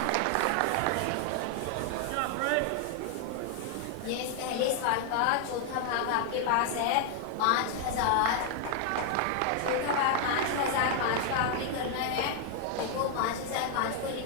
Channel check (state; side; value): different; both; correlation 0.00